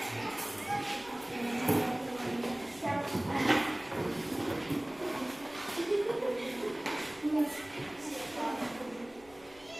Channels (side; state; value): left; noise; rumble, 25 dB below the sound